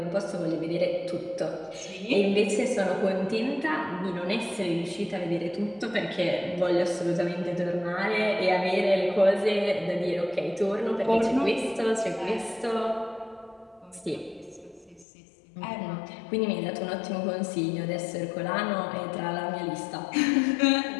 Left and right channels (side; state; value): right; drops out; at 15.1 s